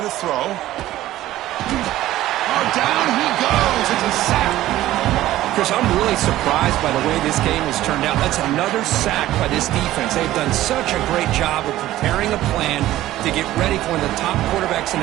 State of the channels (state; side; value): quieter; left; 14.8 dB